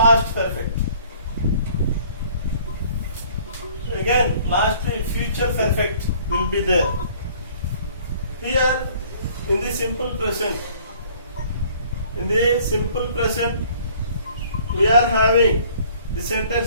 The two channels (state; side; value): inverted; both; correlation -0.56